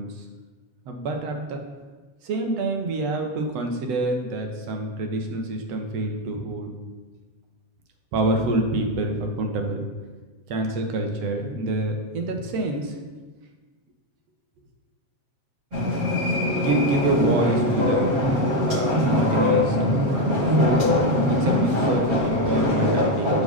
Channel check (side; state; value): left; late; 7.3 ms